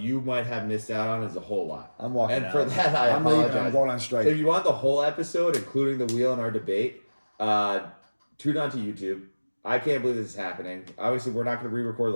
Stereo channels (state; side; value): inverted; both; correlation -1.00